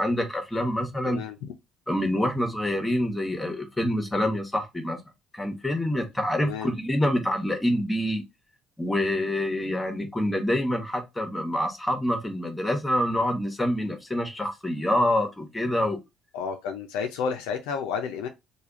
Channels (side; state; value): both; normal; correlation 0.87